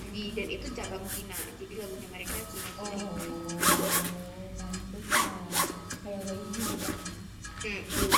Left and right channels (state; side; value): identical; both; correlation 1.00